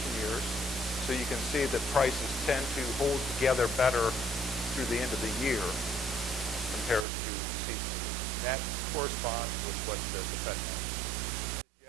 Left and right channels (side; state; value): left; drops out; at 7.1 s